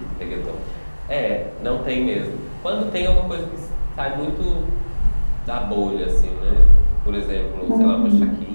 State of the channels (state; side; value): inverted; both; correlation -1.00